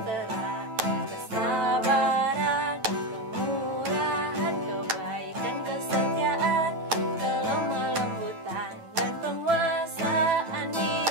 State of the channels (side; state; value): left; late; 9.1 ms